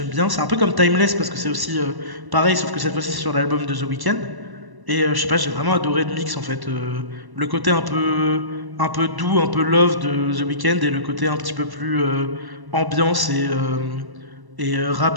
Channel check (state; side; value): late; left; 1.1 ms